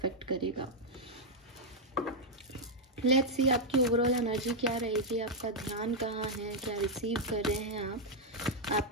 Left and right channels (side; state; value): both; normal; correlation -0.03